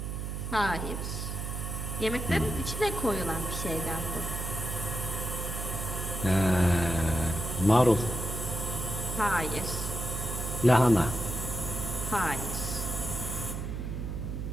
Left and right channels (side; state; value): right; noise; hum, 4 dB below the sound